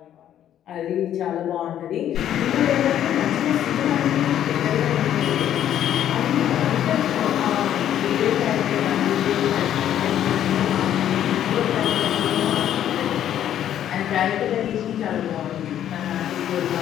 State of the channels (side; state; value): right; quieter; 10.8 dB